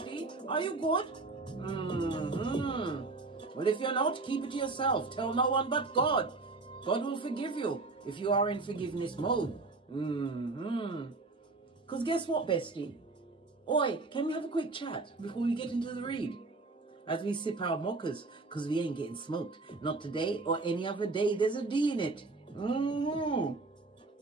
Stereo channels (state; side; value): quieter; left; 3.6 dB